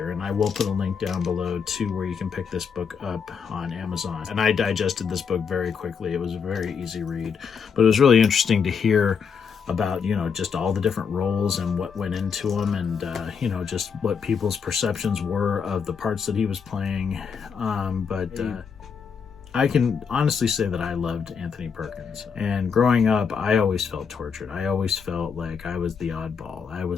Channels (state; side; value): quieter; right; 6.3 dB